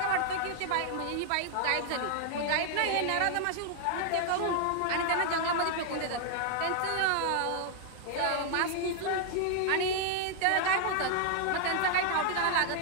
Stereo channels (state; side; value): different; both; correlation 0.00